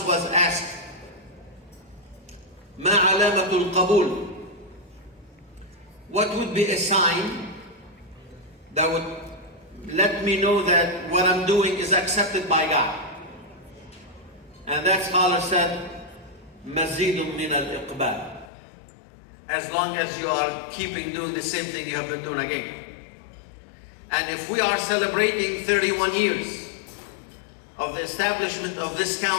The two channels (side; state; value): right; drops out; at 18.5 s